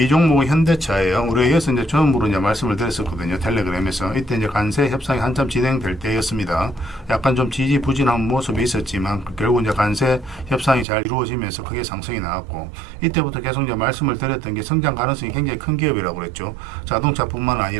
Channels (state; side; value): drops out; left; at 10.9 s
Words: 종목은 현대차예요. 우리가 여기서 이제 처음으로 이제 말씀을 드렸었거든요. 텔레그램에서. 이때 이제 관세 협상이 한참 진행될 때였습니다. 약간 좀 지지부진한 모습이 있었지만 결국 이제 관세 협상이 잘 이루어지면서 크게 상승이 나왔고 이때부터 계속 이제 말씀을 드렸던 게 성장 가능성이 굉장히 큰 기업이라고 그랬죠. 자동차뿐만